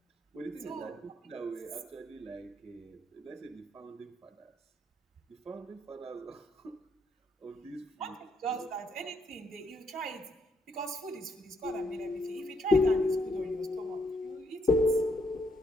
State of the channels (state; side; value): normal; both; correlation 0.74